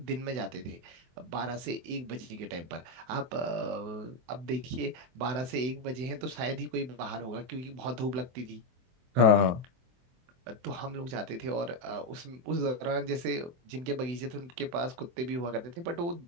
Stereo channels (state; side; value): late; left; 23 ms